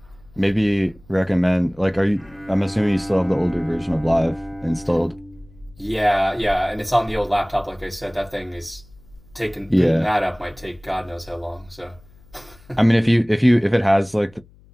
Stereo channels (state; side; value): noise; left; hum, 26 dB below the sound